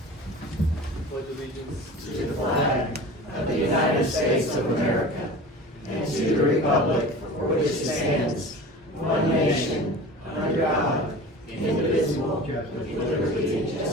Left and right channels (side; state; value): both; normal; correlation 0.37